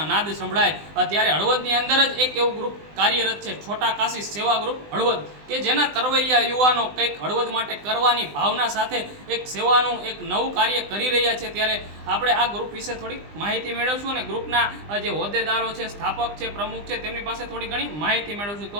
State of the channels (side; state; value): left; late; 20 ms